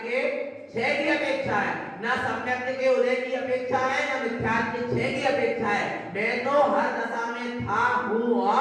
क्षय की अपेक्षा है, ना सम्यक के उदय की अपेक्षा है, ना मिथ्यात्व के क्षय की अपेक्षा है। मैं तो हर दशा में था, हूं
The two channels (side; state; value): both; identical; correlation 1.00